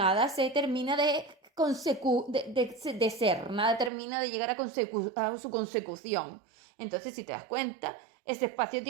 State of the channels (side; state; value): left; drops out; at 3.9 s